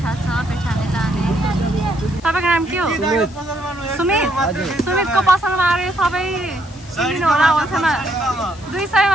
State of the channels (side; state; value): left; noise; hiss, 23 dB below the sound